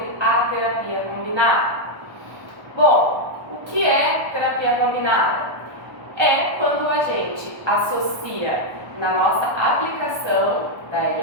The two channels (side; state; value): left; late; 1.1 ms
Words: a terapia combinada. Bom, o que é terapia combinada? É quando a gente associa na nossa aplicação da